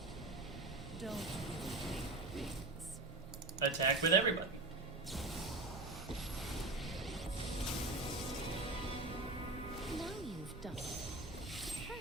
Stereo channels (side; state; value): left; quieter; 3.1 dB